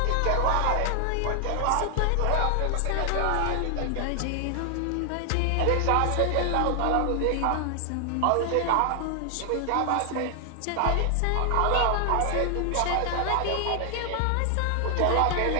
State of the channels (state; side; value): different; both; correlation 0.00